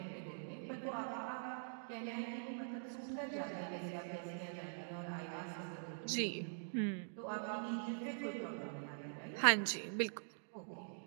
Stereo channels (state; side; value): silent; left; digital silence